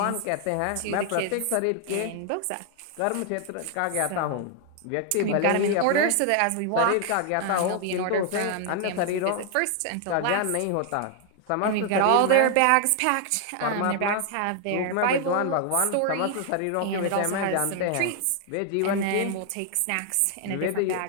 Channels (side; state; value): both; different; correlation 0.00